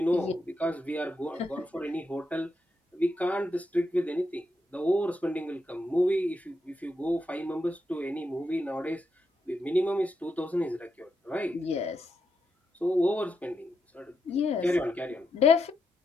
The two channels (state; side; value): normal; both; correlation 0.83